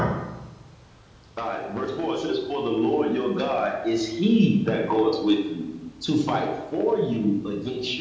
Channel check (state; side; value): identical; both; correlation 1.00